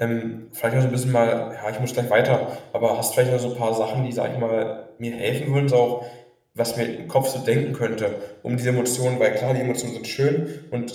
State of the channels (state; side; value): identical; both; correlation 1.00